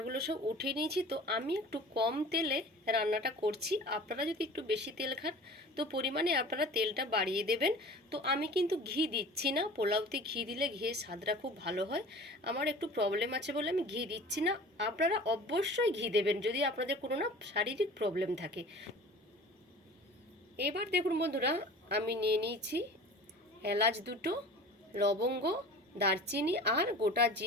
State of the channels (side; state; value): both; normal; correlation 0.41